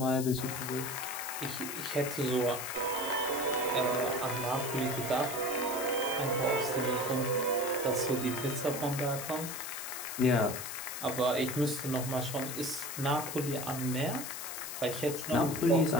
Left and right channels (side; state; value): left; noise; hiss, 7 dB below the sound